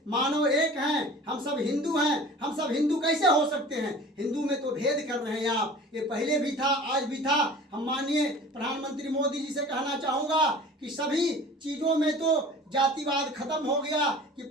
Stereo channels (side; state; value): both; normal; correlation 0.42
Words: मानव एक हैं, हम सब हिंदू हैं। हम सब हिंदू कैसे हो सकते हैं? हिंदू में तो भेद कर रहे हैं आप। ये पहले भी था, आज भी था। हम माननीय प्रधानमंत्री मोदी जी से कहना चाहूँगा कि सभी चीज़ों में तो जातिवाद खत्म हो गया कि